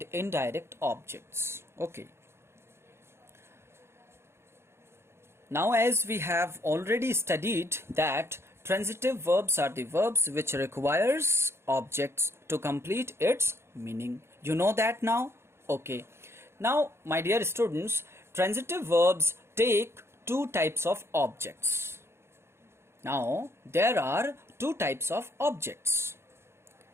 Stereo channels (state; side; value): late; left; 0.12 ms